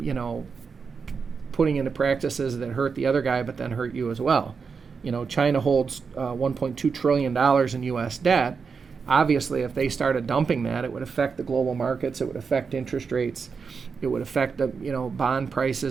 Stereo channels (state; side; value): quieter; left; 5.5 dB